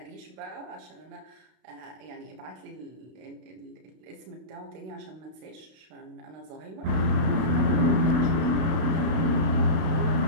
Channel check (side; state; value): left; late; 32 ms